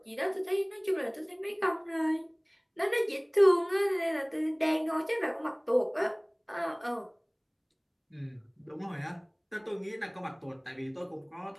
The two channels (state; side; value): identical; both; correlation 1.00